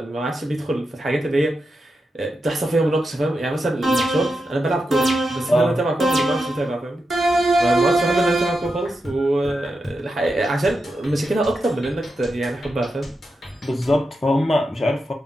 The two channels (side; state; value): both; normal; correlation 0.88